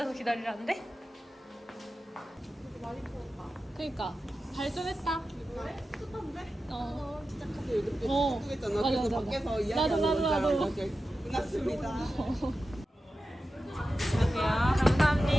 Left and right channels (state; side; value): normal; both; correlation 0.92